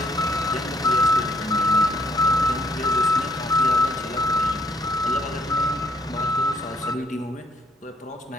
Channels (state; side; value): normal; both; correlation 0.69